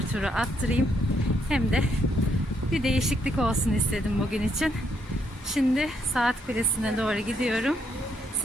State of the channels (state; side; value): normal; both; correlation 0.75